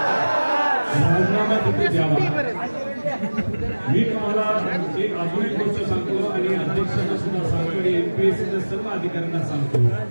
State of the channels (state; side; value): inverted; both; correlation -1.00